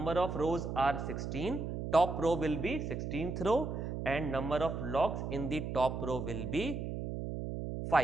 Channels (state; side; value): noise; right; hum, 4 dB below the sound